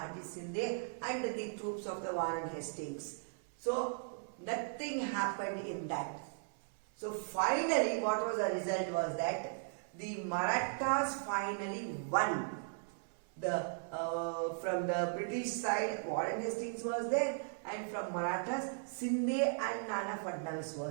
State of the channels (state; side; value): silent; left; 53 dB below the other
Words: Shinde, and the troops of the Warren Hastings. So nothing happened in that. So finally what was the result was that the Marathas finally won. From the British side, Warren Hastings was there, and from Marathas, Shinde and Nana Fadnavis